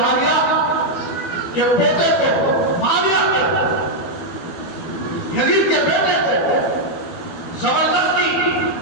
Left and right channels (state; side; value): late; right; 12 ms